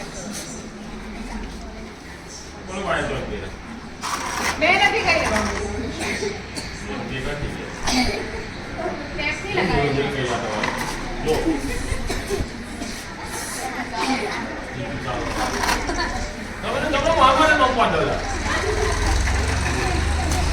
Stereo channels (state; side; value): identical; both; correlation 1.00